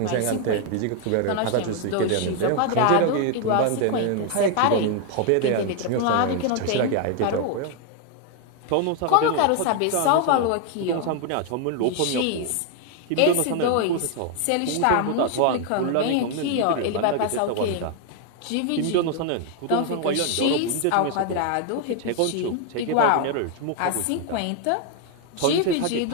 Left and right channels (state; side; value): different; both; correlation 0.01